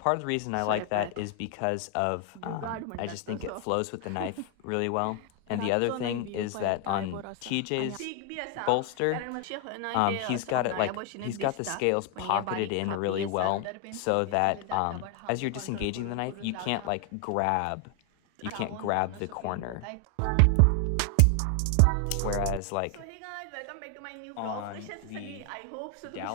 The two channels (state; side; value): different; both; correlation 0.00